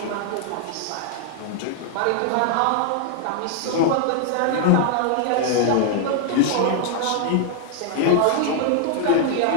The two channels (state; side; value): different; both; correlation 0.00